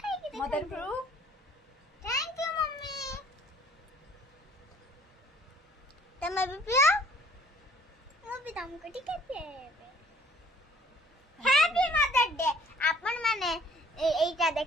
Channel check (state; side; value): normal; both; correlation 0.57